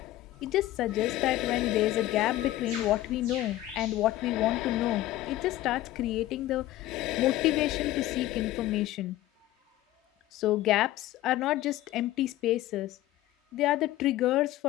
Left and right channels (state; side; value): quieter; right; 15.3 dB